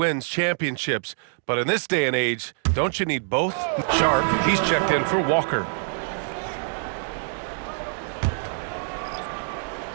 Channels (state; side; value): silent; left; 62 dB below the other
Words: championships, but in this day and age, don't you need both? Sharp, he's checked in for Walker.